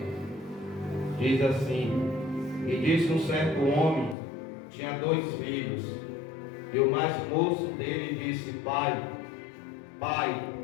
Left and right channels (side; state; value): right; drops out; at 4.2 s